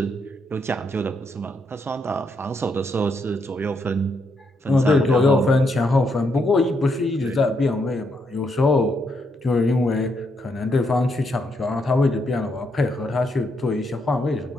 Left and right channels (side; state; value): both; normal; correlation 0.78